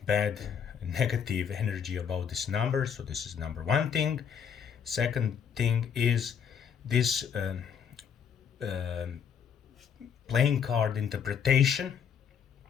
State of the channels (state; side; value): quieter; right; 7.6 dB